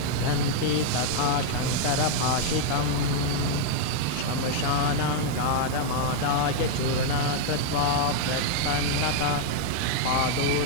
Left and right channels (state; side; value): different; both; correlation 0.00